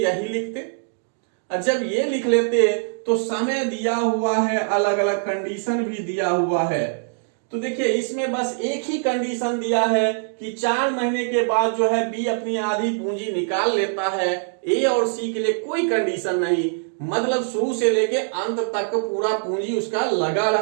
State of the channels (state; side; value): silent; left; digital silence